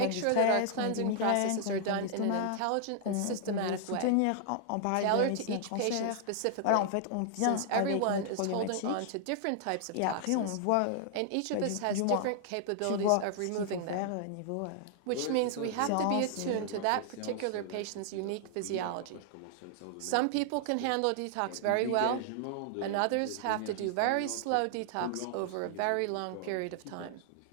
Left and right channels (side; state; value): both; different; correlation -0.01